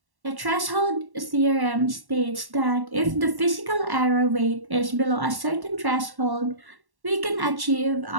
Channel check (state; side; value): late; left; 1.1 ms